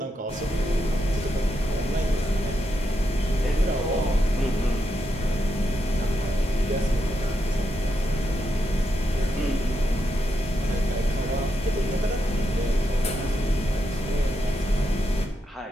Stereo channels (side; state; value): both; normal; correlation 0.83